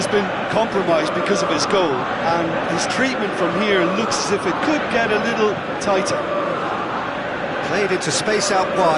been compromised because of his goal, and his treatment from here looks as if it could get a little tighter. Played into space out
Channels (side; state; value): both; identical; correlation 1.00